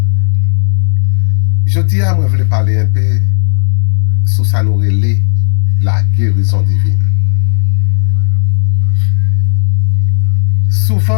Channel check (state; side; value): silent; right; digital silence